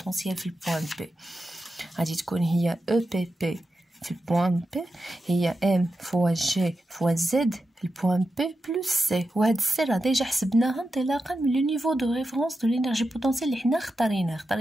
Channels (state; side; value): normal; both; correlation 0.90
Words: في البوان بي؟ غادي تكون هي او بي بي في البوان بي هي ام فوا جي فوا زد في البوان بي بلس سي. وهاد السي راه ديجا حسبناها انطلاقا من لو نيفو دو ريفرونس دو لينيرجي بوتونسيال اللي حنا